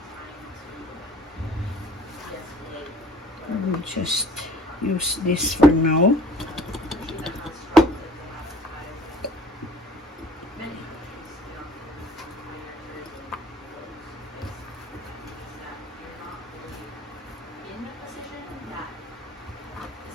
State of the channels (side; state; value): both; normal; correlation 0.53